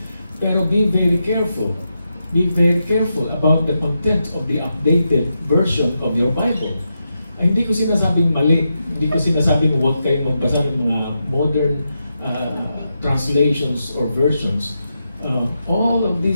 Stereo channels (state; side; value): inverted; both; correlation -0.86